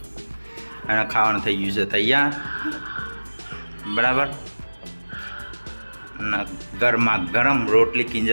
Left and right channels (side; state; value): both; inverted; correlation -1.00